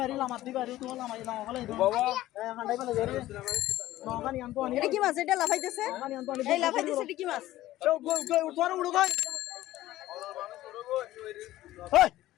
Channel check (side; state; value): right; quieter; 15.4 dB